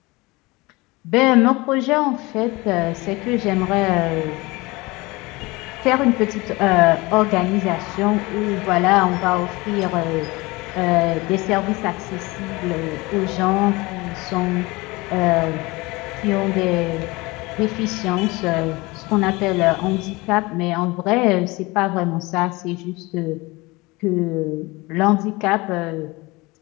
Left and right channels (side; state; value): right; quieter; 23.1 dB